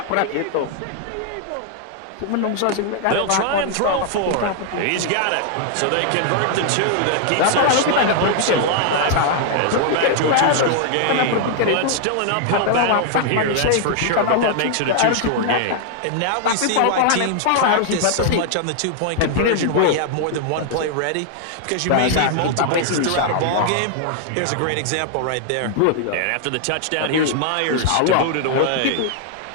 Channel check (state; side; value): different; both; correlation 0.00